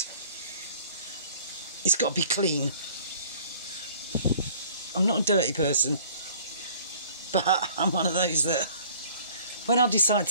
it's got to be clean. I'm not a dirty person, but I'm one of those that when I decide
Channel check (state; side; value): inverted; both; correlation -0.53